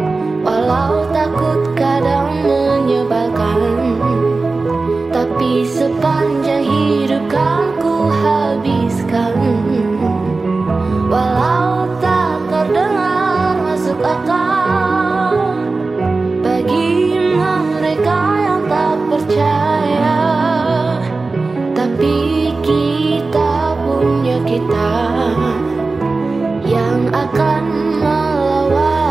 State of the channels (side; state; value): left; quieter; 3.7 dB